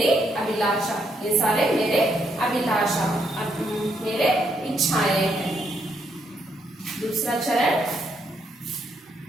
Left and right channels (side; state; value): both; normal; correlation 0.76